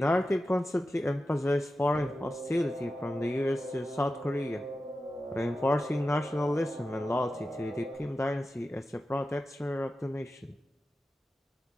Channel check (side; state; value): both; normal; correlation 0.92